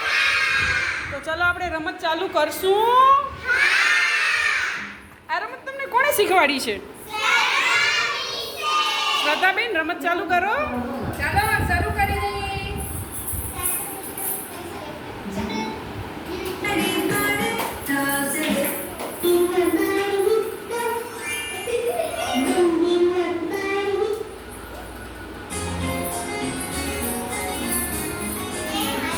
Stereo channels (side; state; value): both; identical; correlation 1.00